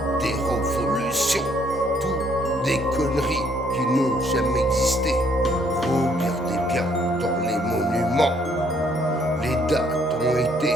des révolutions, tout des conneries qui n'ont jamais existé. Regardez bien dans les monuments, les dates ont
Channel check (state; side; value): normal; both; correlation 0.66